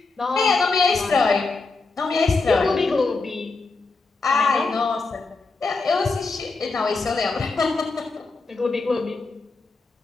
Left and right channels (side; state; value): right; quieter; 3.9 dB